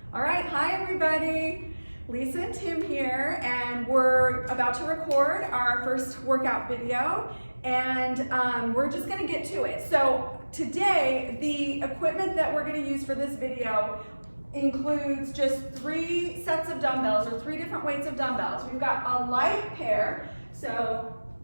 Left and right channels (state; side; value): inverted; both; correlation -1.00